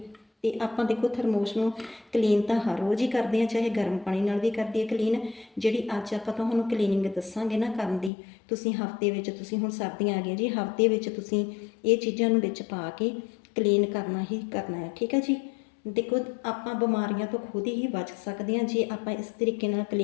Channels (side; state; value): right; drops out; at 8.1 s